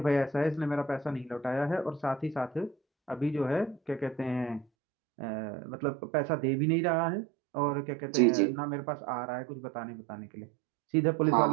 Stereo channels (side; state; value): left; drops out; at 4.7 s